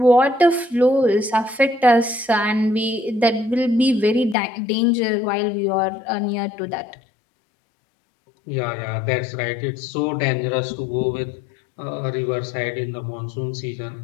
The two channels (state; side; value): drops out; right; at 4.4 s